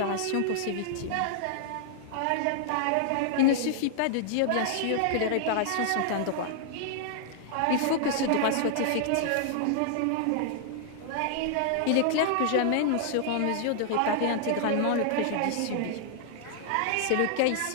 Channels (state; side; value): different; both; correlation -0.01